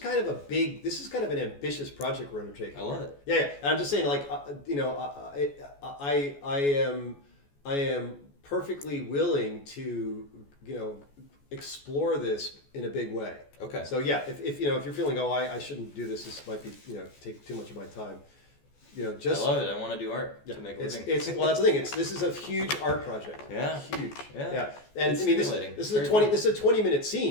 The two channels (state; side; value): late; right; 14 ms